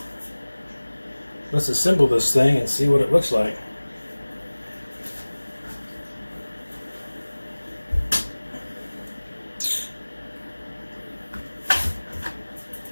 assemble this thing and see what it looks like.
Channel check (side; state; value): both; inverted; correlation -1.00